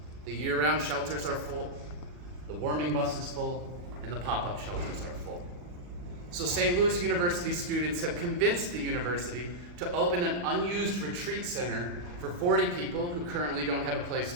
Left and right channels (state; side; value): late; left; 40 ms